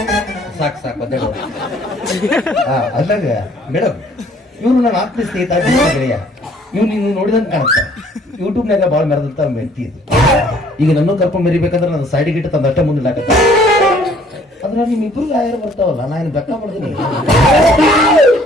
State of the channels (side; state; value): both; normal; correlation 0.59